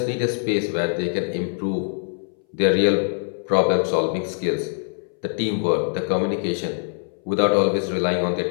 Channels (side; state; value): right; silent; 61 dB below the other